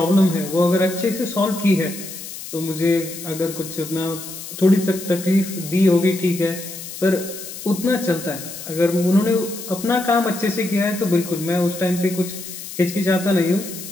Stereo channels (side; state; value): left; noise; hiss, 11 dB below the sound